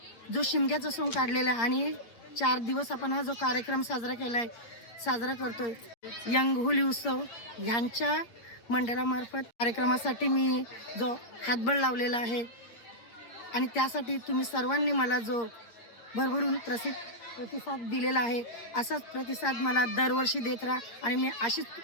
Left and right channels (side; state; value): right; late; 8.6 ms